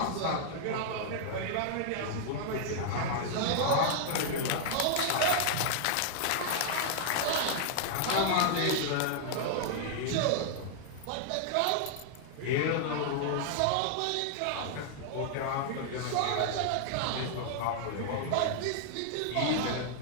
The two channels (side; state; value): both; different; correlation -0.01